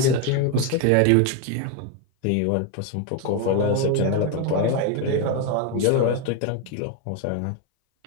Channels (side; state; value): both; different; correlation 0.02